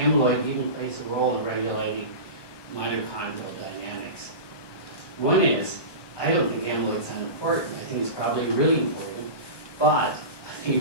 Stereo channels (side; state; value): right; late; 1.2 ms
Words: even plays a role in regulating mitochondrial dynamics. One is, I don't think amyloid's unimportant. I think it's probably really important, but I